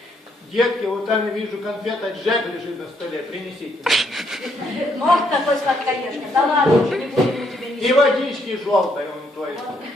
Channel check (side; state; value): both; normal; correlation 0.73